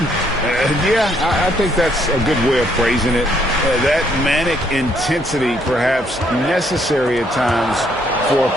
Yeah, I think that's a good way of phrasing it. That manic intensity, perhaps necessary at times for a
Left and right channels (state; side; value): normal; both; correlation 0.69